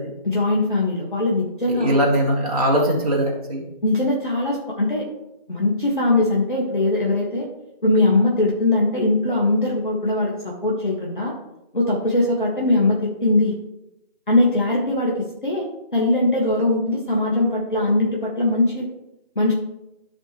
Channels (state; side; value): inverted; both; correlation -0.55